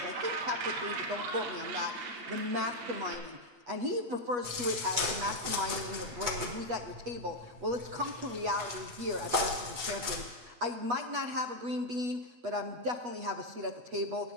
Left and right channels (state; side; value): late; left; 8.0 ms